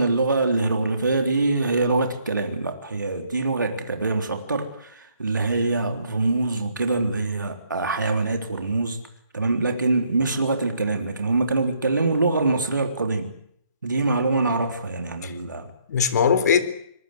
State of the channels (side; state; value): both; inverted; correlation -0.68